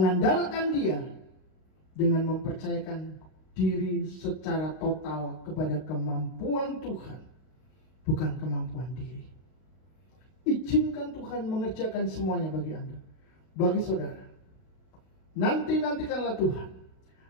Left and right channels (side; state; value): right; late; 32 ms